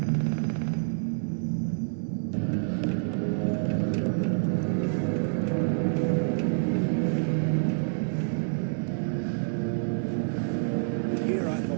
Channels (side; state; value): left; silent; digital silence